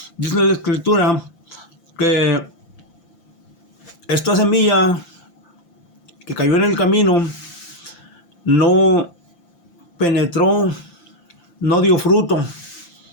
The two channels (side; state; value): right; late; 5.8 ms